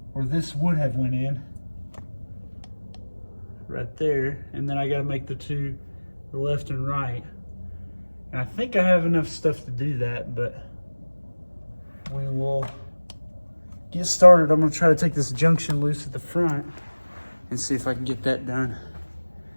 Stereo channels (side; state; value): both; inverted; correlation -1.00